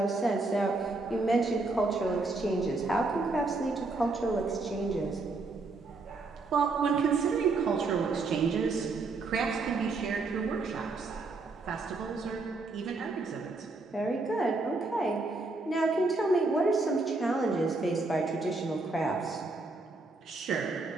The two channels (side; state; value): left; quieter; 3.5 dB